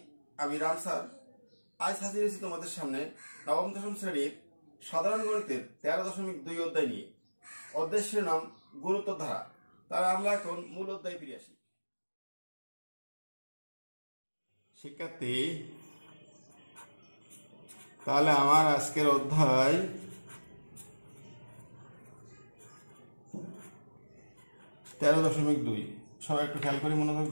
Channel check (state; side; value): inverted; both; correlation -1.00